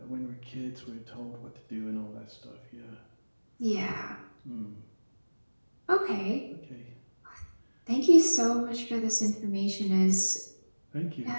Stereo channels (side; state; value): both; inverted; correlation -1.00